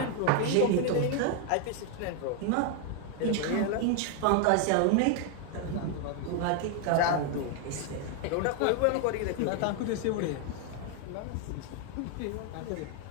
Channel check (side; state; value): both; different; correlation 0.00